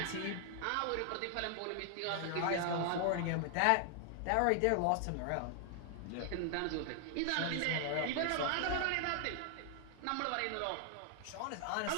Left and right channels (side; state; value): both; different; correlation 0.00